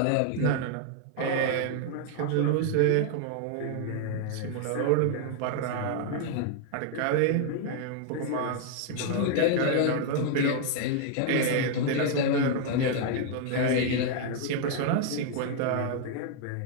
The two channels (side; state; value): both; different; correlation 0.00